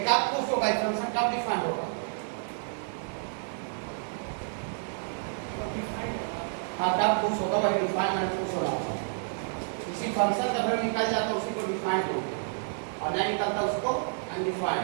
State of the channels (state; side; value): silent; left; digital silence